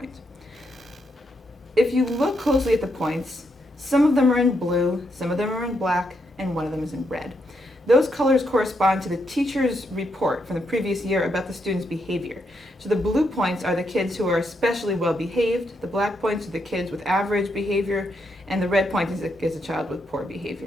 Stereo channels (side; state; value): both; normal; correlation 0.79